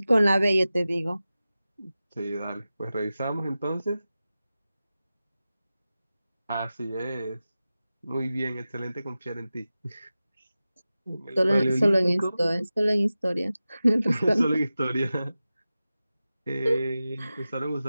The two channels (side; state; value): both; inverted; correlation -0.95